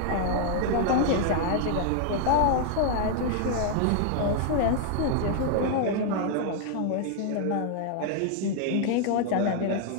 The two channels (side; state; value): both; different; correlation 0.00